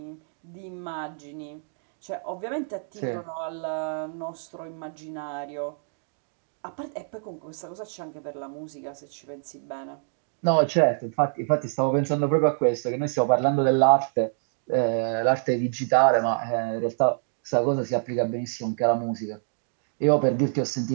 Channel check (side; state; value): left; silent; digital silence